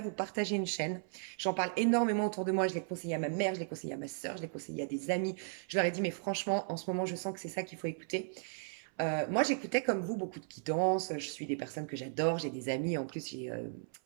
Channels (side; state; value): left; silent; 54 dB below the other